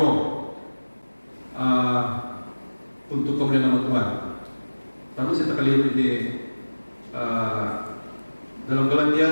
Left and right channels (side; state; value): both; inverted; correlation -1.00